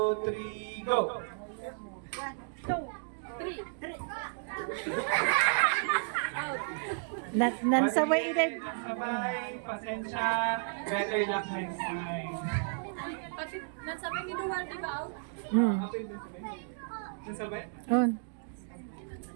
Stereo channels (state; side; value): silent; left; digital silence